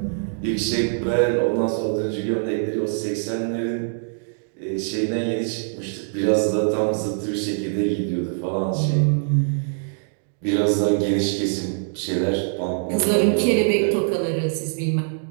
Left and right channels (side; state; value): left; silent; digital silence